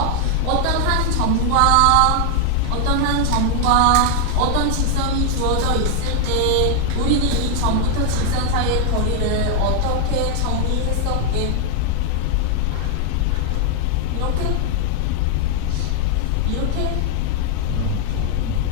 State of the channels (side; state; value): both; different; correlation 0.00